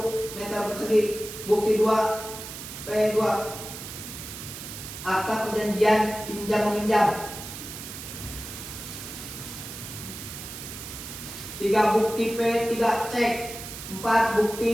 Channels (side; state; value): right; noise; hiss, 10 dB below the sound